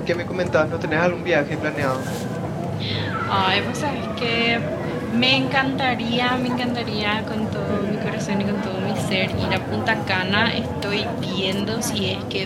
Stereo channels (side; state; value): both; identical; correlation 1.00